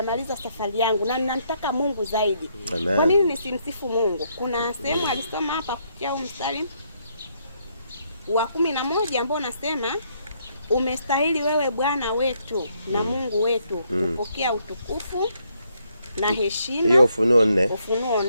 safari yangu na ninamtaka Mungu zaidi, Amen. Kwa nini nisimsifu Mungu? Kuna sehemu alisoma hapa kufikia mstari wa 11 ambao nasema, umestahili wewe Bwana wetu na Mungu wetu kupokea utukufu na heshima. Hiyo Ufunuo 4. Ufunuo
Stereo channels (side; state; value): both; inverted; correlation -0.73